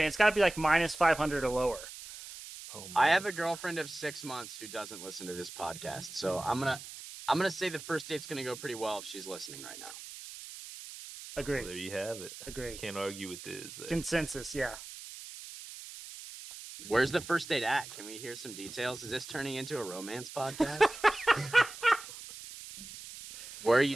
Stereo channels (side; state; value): right; noise; hiss, 13 dB below the sound